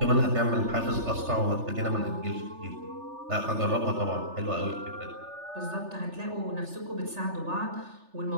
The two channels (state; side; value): late; left; 3.3 ms